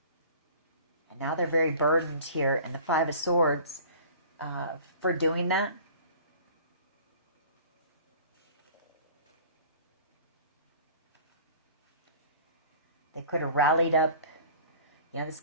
And now they're very burdened here. And the Five of Swords for doing that. They could have rallied up. You know, this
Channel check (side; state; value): both; inverted; correlation -0.45